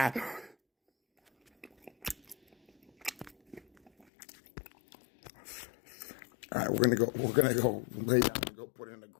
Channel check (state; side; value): drops out; right; at 4.0 s